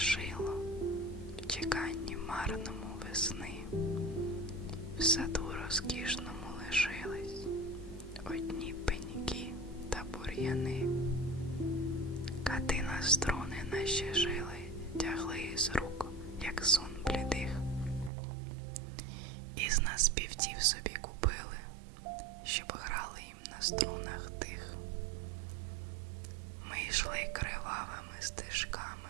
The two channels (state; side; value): drops out; left; at 18.1 s